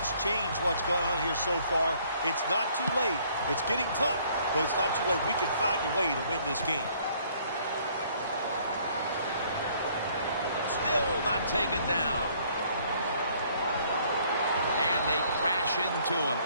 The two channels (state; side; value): inverted; both; correlation -0.62